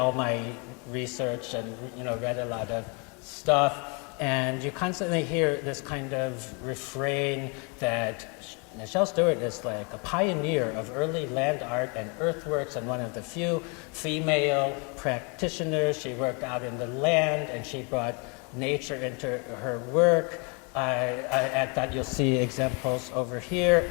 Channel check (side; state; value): right; quieter; 33.7 dB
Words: my research and read a lot of stuff. And you constantly hear this kind of refrain that Michelle Stuart is like a pioneer of early land art and earthworks, and one of the few female practitioners. She worked out in the land, and she brought nature into her work. At that you'll see examples over here,